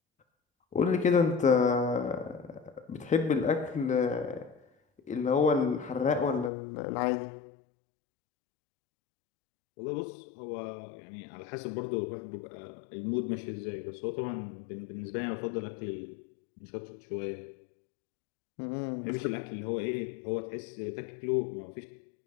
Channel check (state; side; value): drops out; right; at 6.5 s